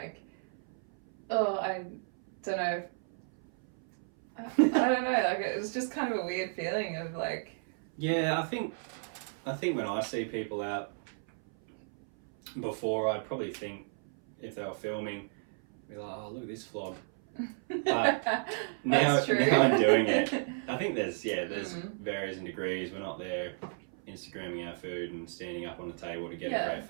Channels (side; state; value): left; silent; 56 dB below the other